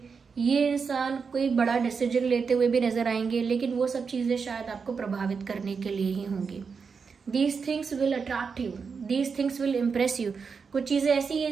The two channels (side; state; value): left; quieter; 5.5 dB